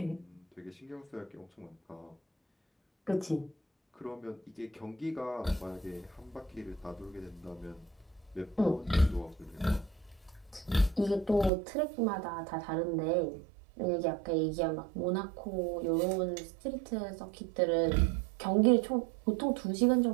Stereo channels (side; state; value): left; drops out; at 11.5 s